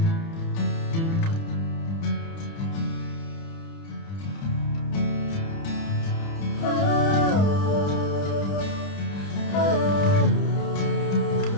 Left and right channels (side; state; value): right; late; 30 ms